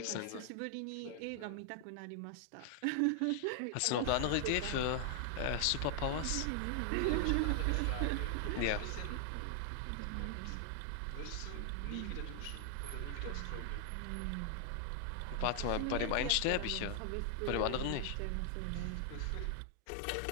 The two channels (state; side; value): different; both; correlation 0.00